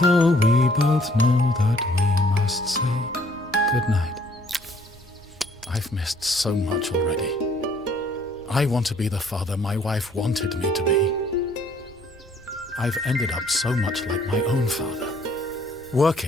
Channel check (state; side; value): normal; both; correlation 0.61